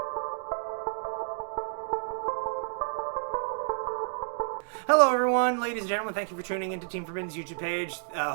Hello, everyone, ladies and gentlemen. Thank you for tuning into Team Forbidden's YouTube page.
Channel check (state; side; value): silent; left; digital silence